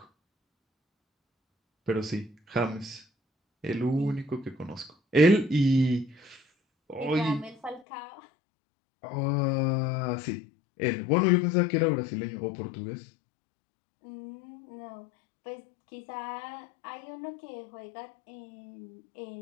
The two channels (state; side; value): drops out; right; at 7.8 s